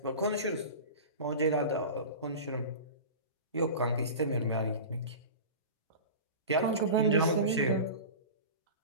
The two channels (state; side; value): inverted; both; correlation -0.32